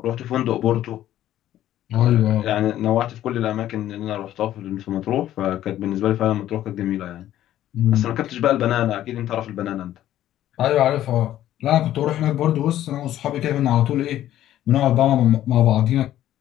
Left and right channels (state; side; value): quieter; right; 12.7 dB